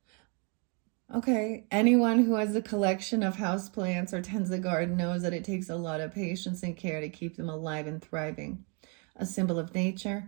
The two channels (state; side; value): quieter; left; 35.0 dB